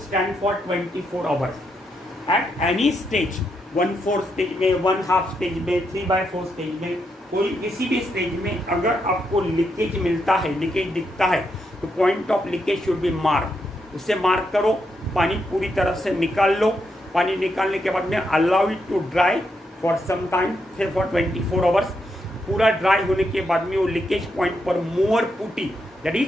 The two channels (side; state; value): both; normal; correlation 0.81